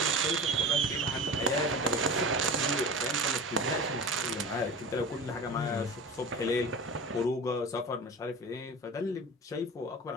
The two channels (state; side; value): normal; both; correlation 0.34